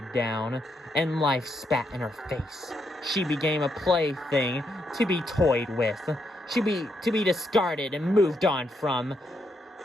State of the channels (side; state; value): both; normal; correlation 0.79